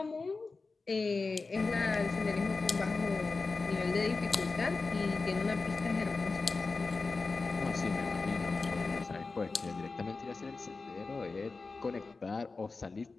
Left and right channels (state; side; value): quieter; right; 4.0 dB